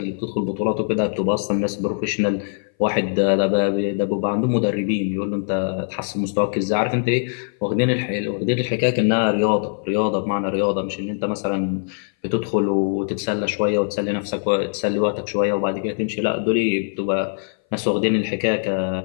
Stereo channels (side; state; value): right; silent; 59 dB below the other